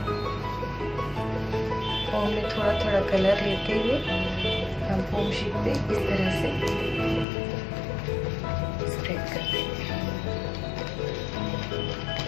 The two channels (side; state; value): right; drops out; at 7.2 s